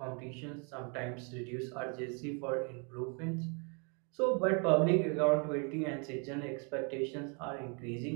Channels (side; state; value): left; quieter; 35.8 dB